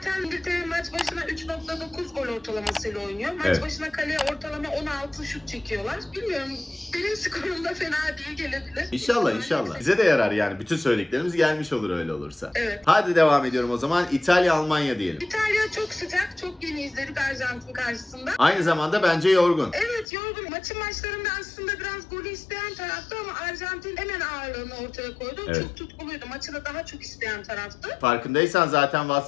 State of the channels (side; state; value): right; drops out; at 20.1 s